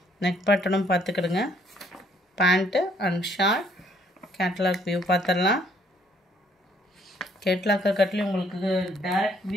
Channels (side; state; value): both; normal; correlation 0.65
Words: நெக் பேட்டர்னும் பார்த்துக்கிடுங்க. Pant and short. Catalogue view பார்த்துடலாம். கேட்லாக்கை கட்டிலும் உங்களுக்கு டைரக்ட்